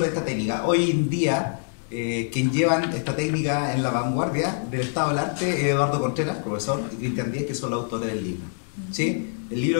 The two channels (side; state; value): right; silent; digital silence